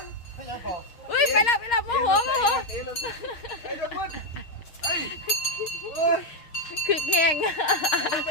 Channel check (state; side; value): late; right; 6.4 ms